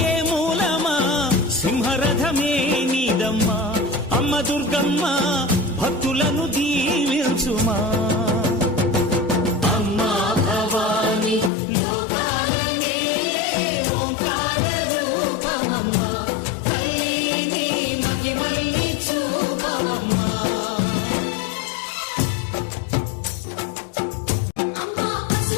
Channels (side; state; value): right; drops out; at 11.5 s